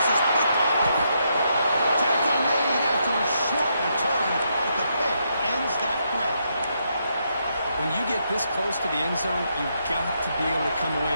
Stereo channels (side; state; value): both; inverted; correlation -0.78